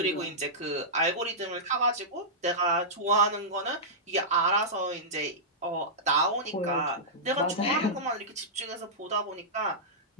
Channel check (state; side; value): normal; both; correlation -0.13